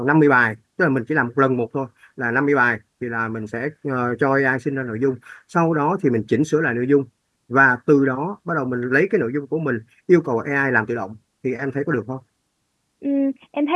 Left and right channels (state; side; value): identical; both; correlation 1.00